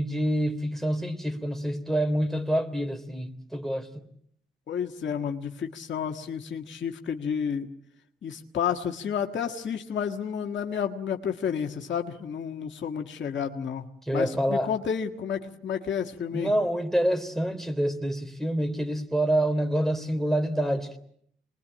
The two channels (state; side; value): normal; both; correlation 0.76